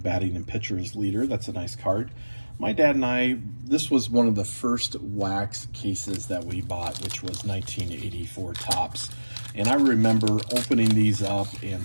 and pitchers leader. That's a nice card. My dad and I, this was one of the first wax cases that we bought, which was 1984 Topps. And I remember opening these up and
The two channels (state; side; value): inverted; both; correlation -1.00